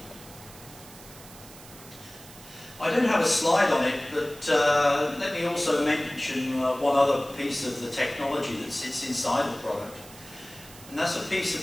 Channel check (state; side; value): noise; right; hiss, 19 dB below the sound